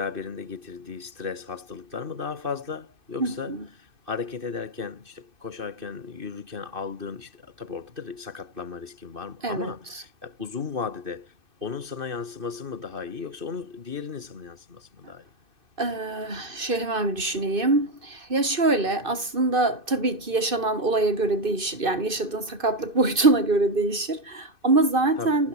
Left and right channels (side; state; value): left; late; 2.6 ms